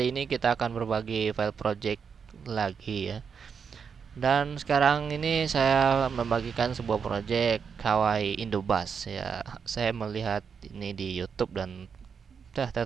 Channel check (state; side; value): quieter; left; 6.4 dB